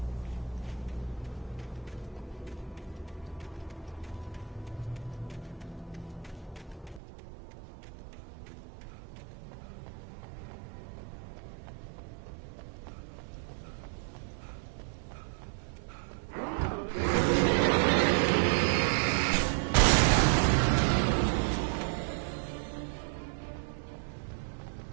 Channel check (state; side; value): drops out; left; at 7.0 s